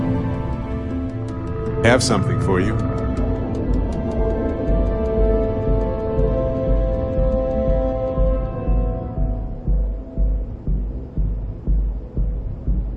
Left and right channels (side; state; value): both; identical; correlation 1.00